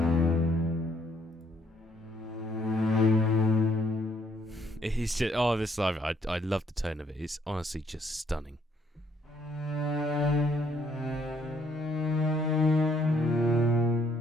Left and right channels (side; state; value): both; normal; correlation 0.68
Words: It's just, this live, I love the tone of it. It's honestly just stunning.